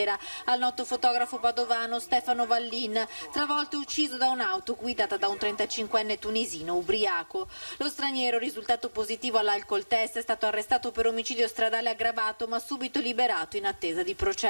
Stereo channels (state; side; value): inverted; both; correlation -1.00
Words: al noto fotografo padovano Stefano Vallin, travolto e ucciso da un'auto guidata da un 35enne tunisino ubriaco. Lo straniero, risultato positivo all'alcol test, è stato arrestato per omicidio stradale aggravato ma subito liberato in attesa di